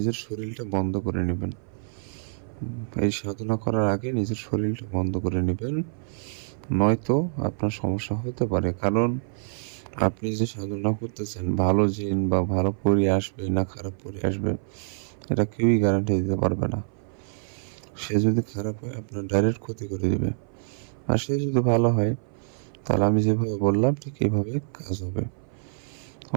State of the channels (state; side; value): silent; left; 57 dB below the other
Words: শরীরটা বন্ধ করে নেবেন। এই সাধনা করার আগে নিজের শরীরটা বন্ধ করে নেবেন, নয়তো আপনার সমস্যা হতে পারে। কারণ আপনি যে সাধনা করতেছেন ভালো জিন বা ভালো পরি আসবে না খারাপ পরি আসবে এটা কেউই গ্যারান্টি দিতে পারবে না। সে যদি খারাপ হয় আপনার ডাইরেক্ট ক্ষতি করে দিবে, আর সে যদি ভালো হয় তাহলে আমি যেভাবে বললাম ঠিক এইভাবে কাজ হবে।